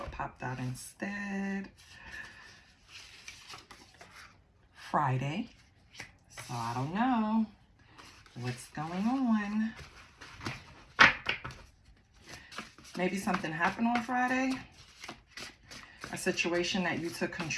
popped out instead. Friday. So I don't know what's going on. Maybe something happened on Friday. A situation that you took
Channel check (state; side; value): identical; both; correlation 1.00